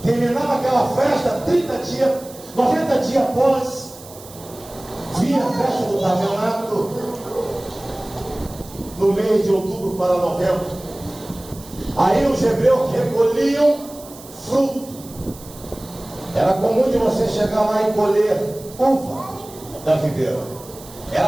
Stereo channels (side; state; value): right; noise; hiss, 19 dB below the sound